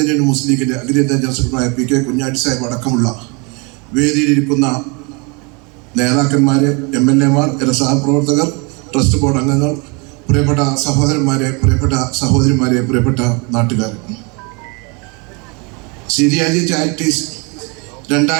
യൂണിയൻ മുസ്ലിം ലീഗിൻ്റെ അഖിലേന്ത്യാ ജനറൽ സെക്രട്ടറിയായ പി കെ കുഞ്ഞാട്ടി സാഹിബ് അടക്കമുള്ള വേദിയിലിരിക്കുന്ന നേതാക്കന്മാരെ, MLA മാർ, സഹപ്രവർത്തകർ, ട്രസ്റ്റ് ബോർഡ് അംഗങ്ങൾ, പ്രിയപ്പെട്ട സഹോദരന്മാരെ, പ്രിയപ്പെട്ട സഹോദരിമാരെ, പ്രിയപ്പെട്ട നാട്ടുകാർ, സീരിയാജി ചാരിറ്റീസ്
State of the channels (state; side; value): quieter; left; 30.7 dB